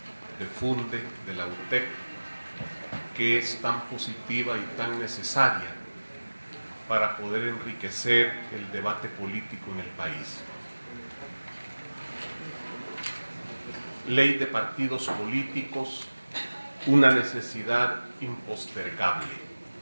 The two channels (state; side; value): inverted; both; correlation -1.00